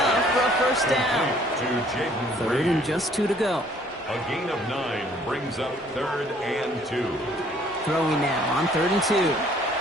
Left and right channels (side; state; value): both; normal; correlation 0.60